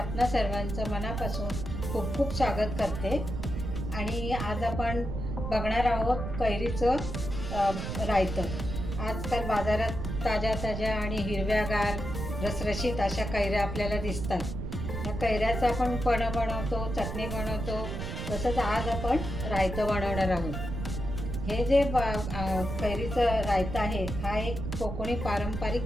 सर्वांचं मनापासून खूप खूप स्वागत करते. आणि आज आपण बघणार आहोत कैरीचं रायतं. आजकाल बाजारात ताज्या ताज्या आणि हिरव्यागार रसरशीत अशा कैऱ्या आपल्याला दिसतात. या कैऱ्याचं आपण पणं बनवतो, चटणी बनवतो, तसंच आज आपण रायतं बनवणार आहोत. हे जे कैरीचं रायतं आहे हा एक कोकणी पारंपरिक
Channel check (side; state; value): right; noise; rumble, 5 dB below the sound